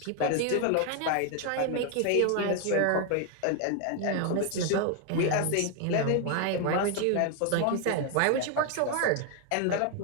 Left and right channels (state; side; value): different; both; correlation 0.01